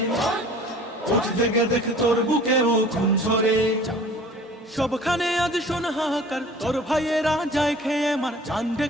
উঠ জেগে দেখে তোর বুকে ও খুন ঝরে। সবখানে আজ শোন হাহাকার, তোর ভাইয়েরা যায় খেয়ে মার, চান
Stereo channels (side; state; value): both; normal; correlation 0.47